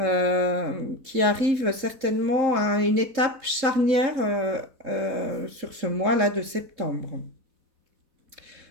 qui arrive certainement à une étape charnière sur ce mois-là de septembre.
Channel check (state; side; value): late; left; 3.7 ms